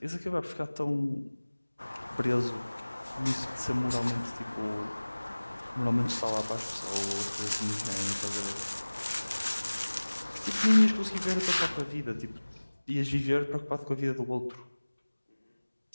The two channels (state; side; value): inverted; both; correlation -1.00